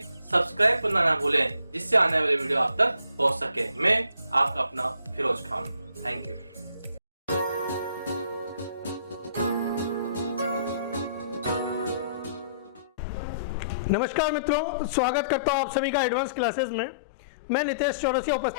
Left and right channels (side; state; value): both; inverted; correlation -0.62